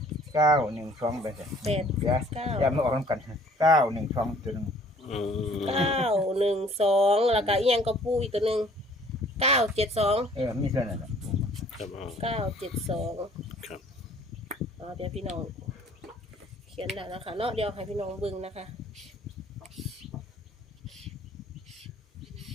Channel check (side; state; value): both; normal; correlation 0.55